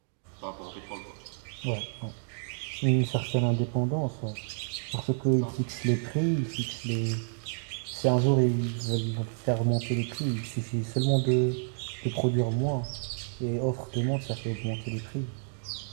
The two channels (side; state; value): left; silent; digital silence